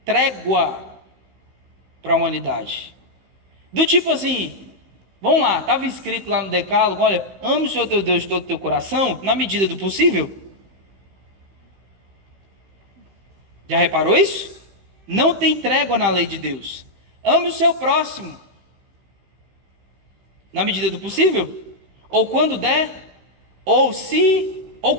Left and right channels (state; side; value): late; left; 16 ms